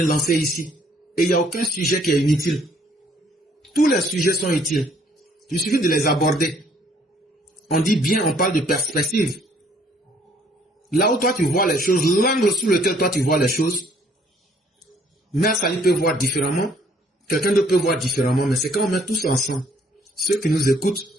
lancer ici. Et il n'y a aucun sujet qui est inutile. Tous les sujets sont utiles. Il suffit de les aborder. On dit bien, on parle de perspective. Là où toi tu vois les choses, l'angle sous lequel toi tu vois les choses, Mère Sali peut voir différemment, quelqu'un d'autre peut voir différemment, mais c'est quand on met tous ensemble. Ceux qui nous écoutent,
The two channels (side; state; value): both; normal; correlation 0.62